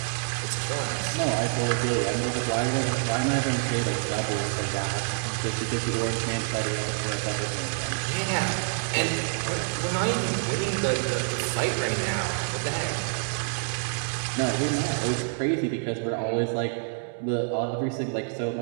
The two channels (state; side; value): silent; left; digital silence